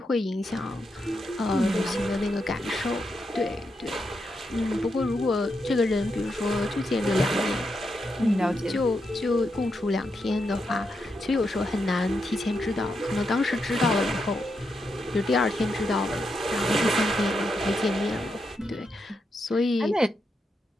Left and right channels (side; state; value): both; normal; correlation 0.83